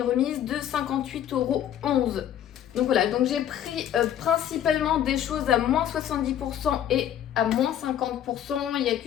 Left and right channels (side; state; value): right; quieter; 10.5 dB